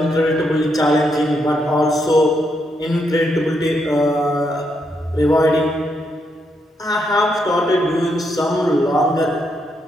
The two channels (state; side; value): normal; both; correlation 0.79